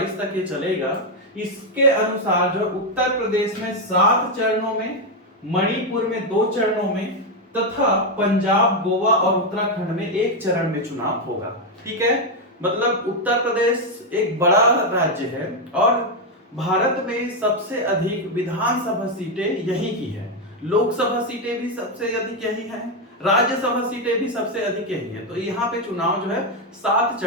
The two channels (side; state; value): both; normal; correlation 0.04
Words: तक ये चलेगा। इसके अनुसार जो उत्तर प्रदेश में 7 चरणों में, मणिपुर में 2 चरणों में तथा पंजाब, गोवा और उत्तराखंड में 1 चरण में चुनाव होगा। ठीक है, मतलब उत्तर प्रदेश एक बड़ा राज्य है और भारत में सबसे अधिक विधानसभा सीटें यही की है। लोकसभा सीटें भी सबसे अधिक यही है, राज्यसभा सीटें भी सबसे अधिक यही है। तो यहाँ पे चुनाव जो है 7